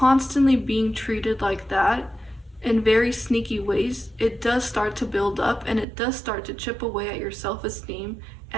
being treated like that in very sneaky ways, it does start to build up, and it does start to chip away at your self-esteem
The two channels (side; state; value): left; drops out; at 5.9 s